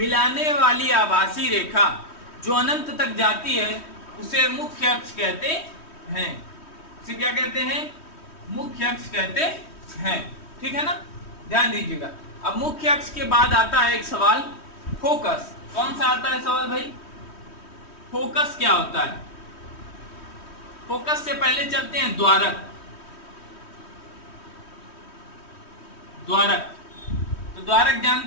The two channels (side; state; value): right; late; 3.1 ms